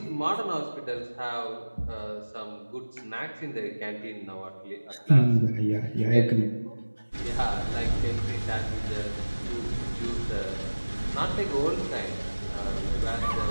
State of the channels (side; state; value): both; inverted; correlation -1.00